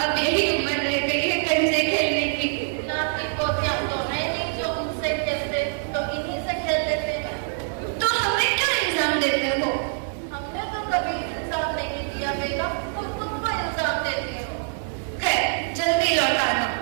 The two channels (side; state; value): left; silent; digital silence